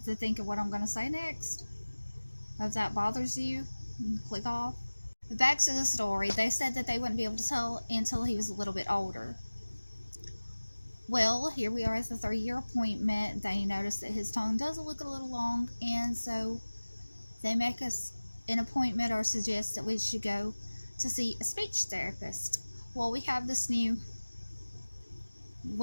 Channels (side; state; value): both; inverted; correlation -1.00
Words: to think of what I'm going to say next. If that bothers you, click off. But back to the story. They said that they wouldn't be able to tell until he was a little bit older. Well, here we are at the 3-year appointment. They noticed that his tongue does look a little long, and so they make us an appointment or suggest that we should go to see a speech therapist. Well, we have this new